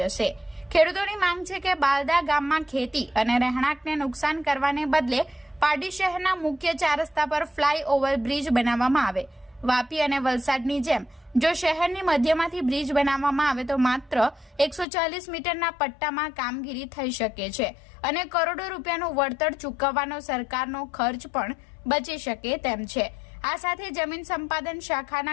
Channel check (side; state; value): right; drops out; at 14.9 s